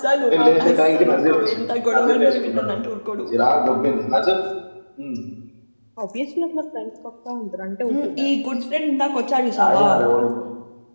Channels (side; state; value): both; inverted; correlation -1.00